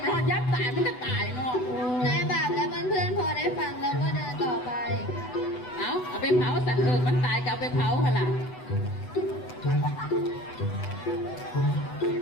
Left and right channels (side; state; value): right; late; 8.0 ms